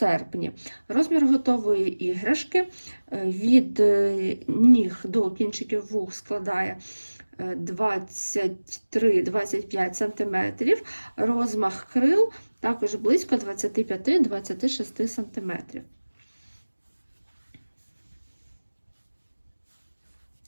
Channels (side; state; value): both; inverted; correlation -1.00